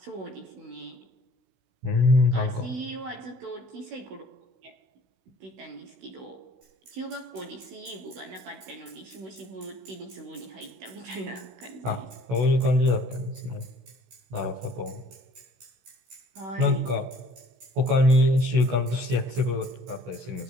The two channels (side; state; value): left; late; 16 ms